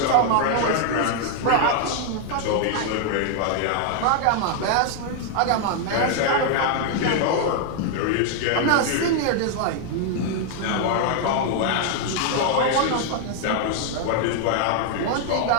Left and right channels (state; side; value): different; both; correlation 0.00